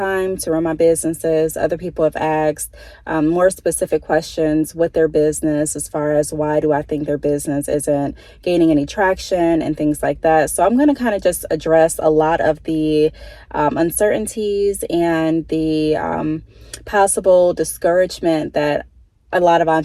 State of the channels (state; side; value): identical; both; correlation 1.00